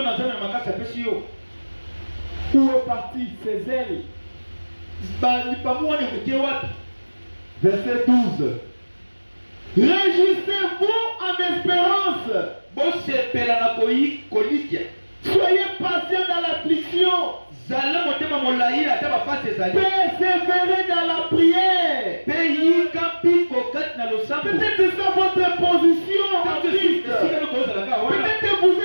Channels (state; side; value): inverted; both; correlation -1.00